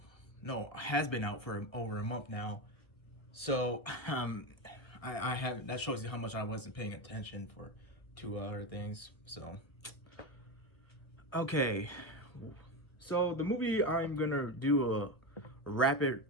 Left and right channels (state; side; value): late; right; 1.0 ms